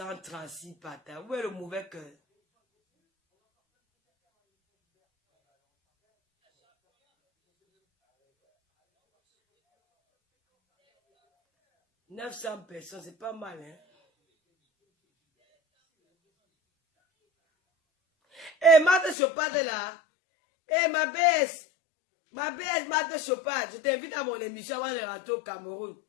patins. Où est le mauvais cœur? « 900 personnes, c'est pas mal, hein? Eh, Marthe Chopard est là. Eh, ma baisse, Marthe Chopard, je t'invite à mon émission avant de rentrer au Cameroun.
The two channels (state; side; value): drops out; right; at 19.2 s